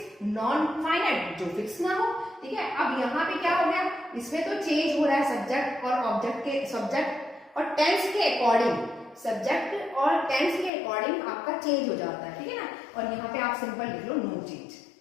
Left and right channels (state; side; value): drops out; right; at 10.7 s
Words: नॉन फाइनाइट जो फिक्स ना हो, ठीक है। अब यहाँ पे क्या हो गया, इसमें तो चेंज हो रहा है सब्जेक्ट और ऑब्जेक्ट के, सब्जेक्ट और टेंस के अकॉर्डिंग, सब्जेक्ट और टेंस के अकॉर्डिंग आपका चेंज हो जाता है, ठीक है ना। और यहाँ पे आप सिंपल लिख लो नो चेंज।